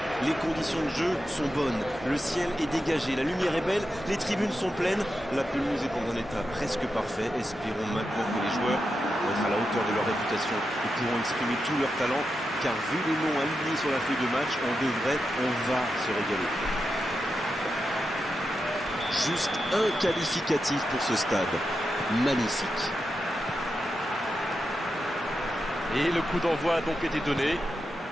Les conditions de jeu sont bonnes, le ciel est dégagé, la lumière est belle, les tribunes sont pleines, la pelouse est dans un état presque parfait. Espérons maintenant que les joueurs vont être à la hauteur de leur réputation et pourront exprimer tout leur talent, car vu les noms alignés sur la feuille de match, on va se régaler. Juste un qualificatif pour ce stade. Magnifique. Et le coup d'envoi a donc été donné.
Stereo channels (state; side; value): normal; both; correlation 0.88